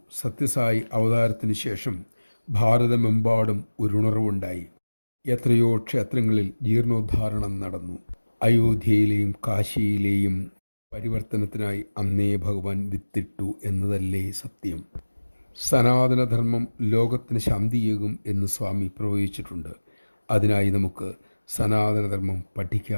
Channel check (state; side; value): inverted; both; correlation -1.00